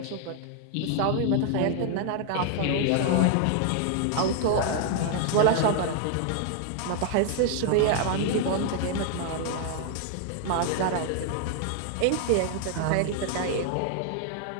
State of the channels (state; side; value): different; both; correlation 0.00